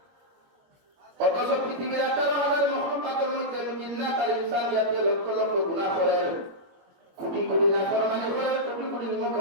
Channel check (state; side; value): late; left; 22 ms